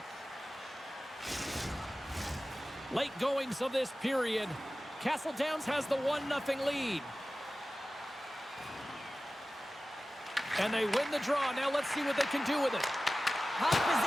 Late goings of this period. Castle Downs has the 1-0 lead. And they win the draw. Now let's see what they can do with it. Puck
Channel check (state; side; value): normal; both; correlation 0.96